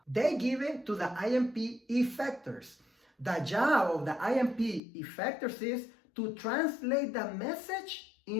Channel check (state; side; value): drops out; right; at 4.8 s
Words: they give it to the IMP effectors. The job of the IMP effectors is to translate the message